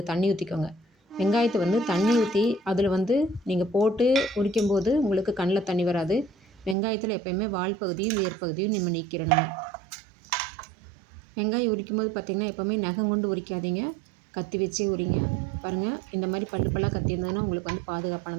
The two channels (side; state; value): left; drops out; at 6.8 s